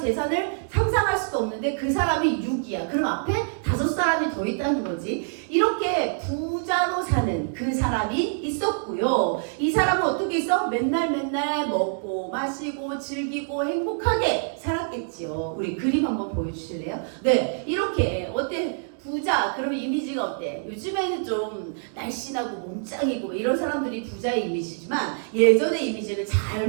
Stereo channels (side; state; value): left; silent; digital silence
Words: 상상할 수도 없는데 그 사람이 6위야. 그럼 앞에 5사람이 더 있다는 거지. 이렇게 부자로 사는 그 사람이 있었고요. 이 사람은 어떻게 있어? 맨날 먹고 마시고 즐기고 행복하게 살았겠지요. 우리 그림 한번 보여주실래요? 네, 이렇게 어때? 부자, 그러면 이미지가 어때? 요즘에는 좀 날씬하고 몸짱이고 이런 사람들이 부자의 이미지지만 예전의 이미지는 잘